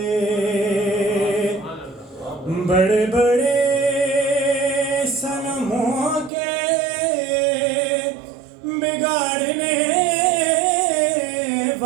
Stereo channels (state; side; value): drops out; left; at 6.3 s